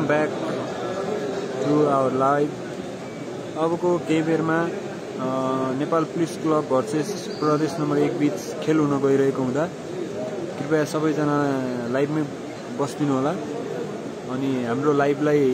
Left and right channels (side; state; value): both; identical; correlation 1.00